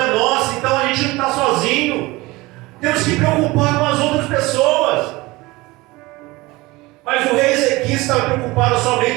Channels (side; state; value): left; quieter; 21.4 dB